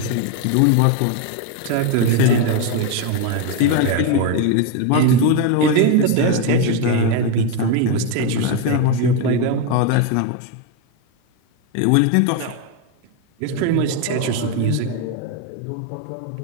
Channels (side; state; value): both; different; correlation 0.02